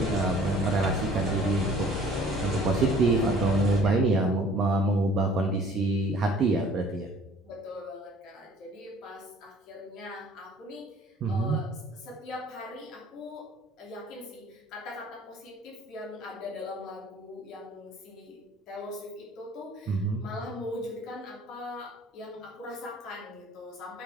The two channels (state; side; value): normal; both; correlation 0.52